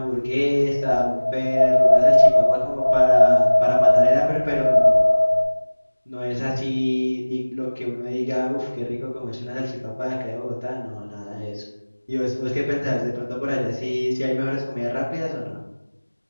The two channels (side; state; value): both; inverted; correlation -1.00